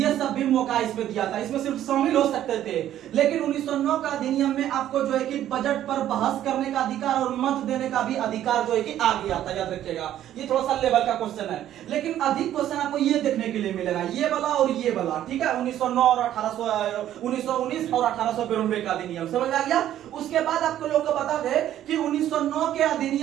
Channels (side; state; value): left; quieter; 11.9 dB